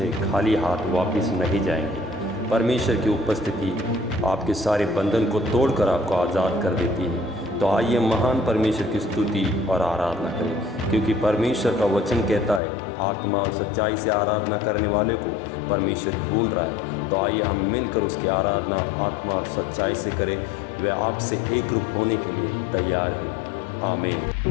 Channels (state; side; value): drops out; right; at 12.6 s